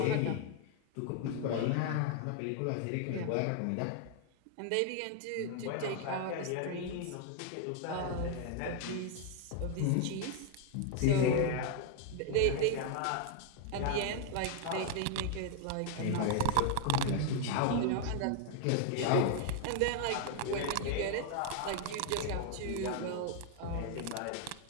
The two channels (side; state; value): both; different; correlation 0.00